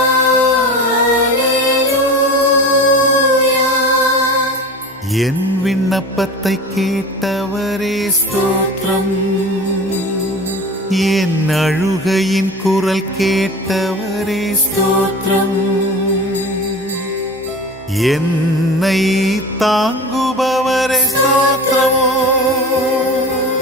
என் விண்ணப்பத்தை கேட்டவரே ஸ்தோத்திரம். என் அழுகையின் குரல் கேட்டவரே ஸ்தோத்திரம். என்னை தாங்குபவரே ஸ்தோத்திரம்.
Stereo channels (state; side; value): normal; both; correlation 0.34